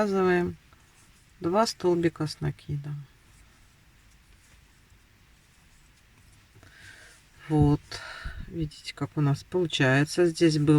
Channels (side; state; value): both; identical; correlation 1.00